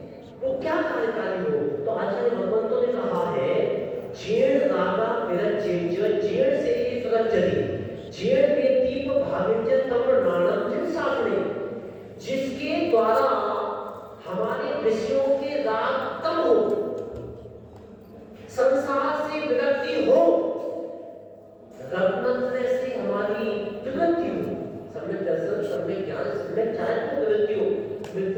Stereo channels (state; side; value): identical; both; correlation 1.00